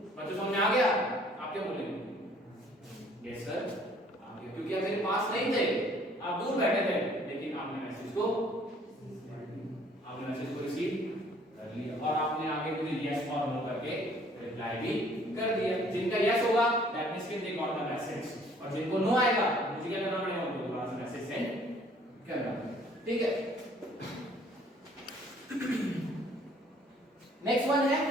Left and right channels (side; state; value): both; normal; correlation 0.58